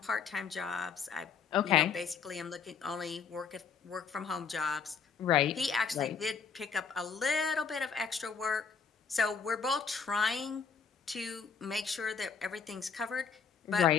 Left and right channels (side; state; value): right; quieter; 6.1 dB